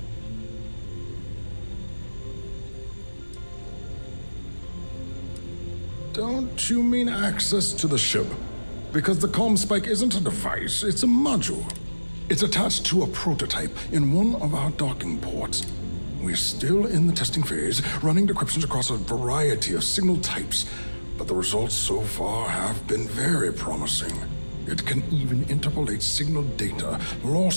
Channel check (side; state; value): both; inverted; correlation -1.00